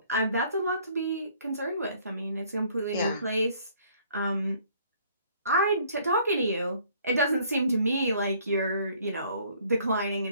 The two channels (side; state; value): both; inverted; correlation -0.60